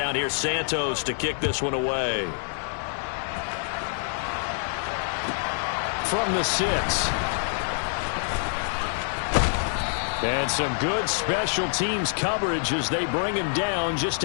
here's Santos to kick this one away. From the 6. And some good special teams coverage as they bring him down just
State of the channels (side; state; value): right; silent; digital silence